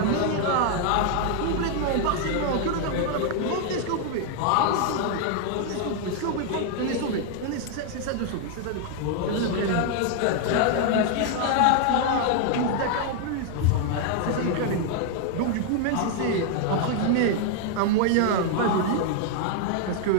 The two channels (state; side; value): different; both; correlation 0.00